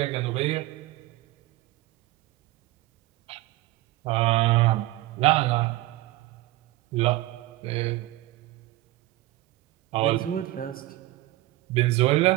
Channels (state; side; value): quieter; left; 17.9 dB